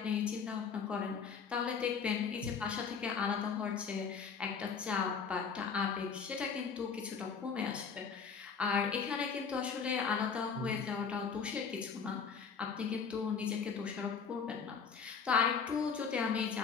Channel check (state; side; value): quieter; right; 6.1 dB